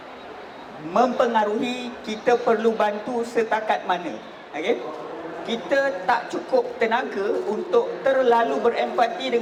mempengaruhi kita perlu bantu setakat mana. Okay? Kita tak cukup tenaga untuk terlalu berempati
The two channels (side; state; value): both; identical; correlation 1.00